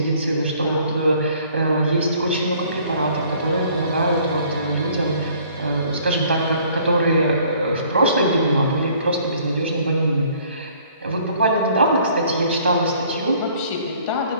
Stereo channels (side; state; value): both; inverted; correlation -0.58